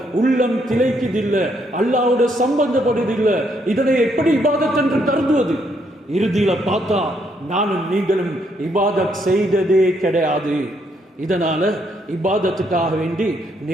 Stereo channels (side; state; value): both; normal; correlation 0.73